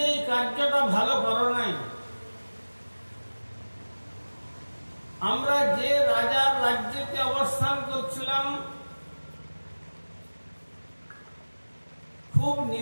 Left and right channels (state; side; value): inverted; both; correlation -1.00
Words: এই কার্যটা ভালো করো নাই। আমরা যে রাজার রাজ্যে অবস্থান করছিলাম, খুব